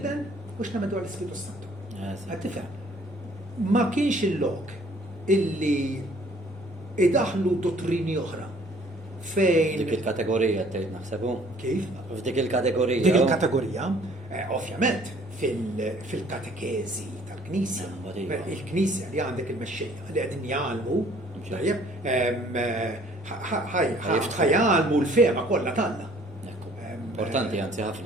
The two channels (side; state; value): both; normal; correlation 0.57